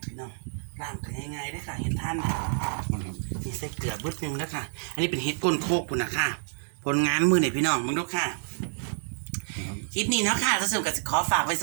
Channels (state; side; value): silent; left; digital silence